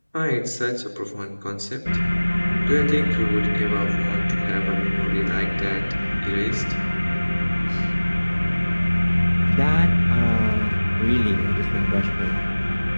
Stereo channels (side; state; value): both; inverted; correlation -1.00